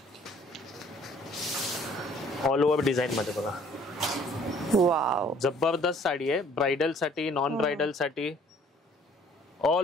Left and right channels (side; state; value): both; normal; correlation 0.57